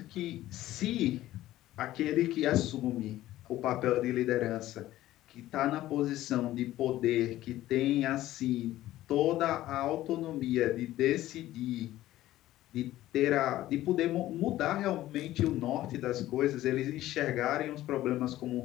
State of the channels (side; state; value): right; quieter; 14.9 dB